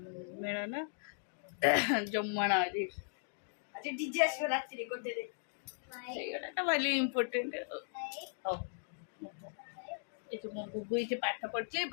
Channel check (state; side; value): silent; right; digital silence